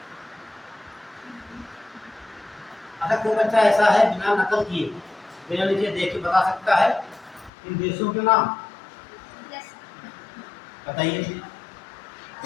अगर कोई बच्चा ऐसा है बिना नकल किए, बिना नीचे देख के बता सकता है इन देशों के नाम, बताइए।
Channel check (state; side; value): drops out; right; at 7.5 s